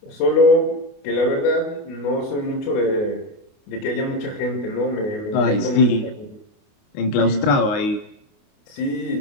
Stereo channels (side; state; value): right; late; 28 ms